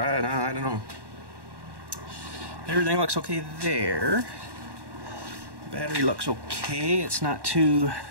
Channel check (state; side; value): late; left; 1.1 ms